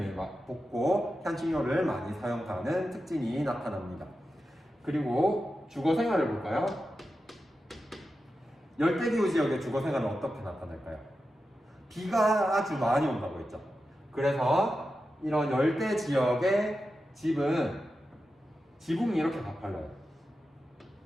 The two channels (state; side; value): normal; both; correlation 0.91